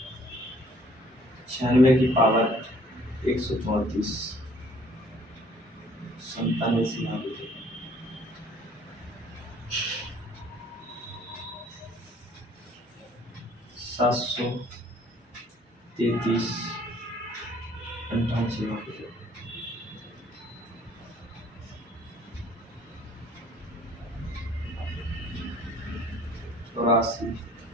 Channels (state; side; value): normal; both; correlation 0.57